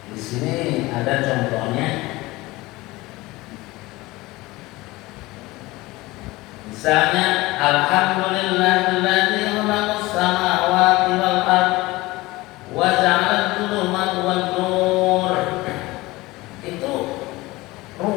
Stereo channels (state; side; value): quieter; right; 20.4 dB